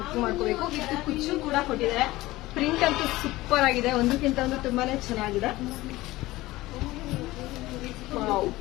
ಬುಕ್ ಮಾಡ್ಕೋಬೇಕು. ವಿತ್ ಕುಚ್ಚು ಕೂಡ ಕೊಟ್ಟಿದ್ದಾರೆ. ಪ್ರಿಂಟ್ ಅಂತೂ ಸೂಪರ್ ಆಗಿದೆ. ಒಂದಕ್ಕಿಂತ ಒಂದು ತುಂಬಾನೇ ಚೆನ್ನಾಗಿದೆ.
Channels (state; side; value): quieter; right; 18.4 dB